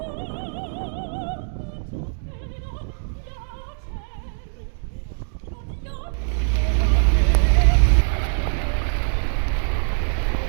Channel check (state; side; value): silent; left; digital silence